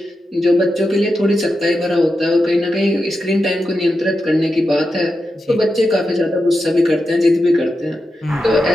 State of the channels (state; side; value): normal; both; correlation 0.89